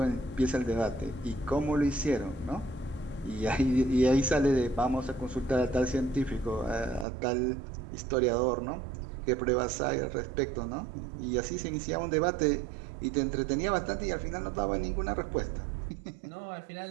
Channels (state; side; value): drops out; left; at 7.1 s